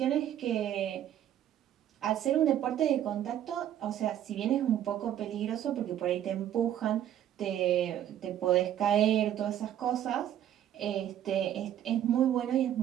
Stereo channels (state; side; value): quieter; left; 11.1 dB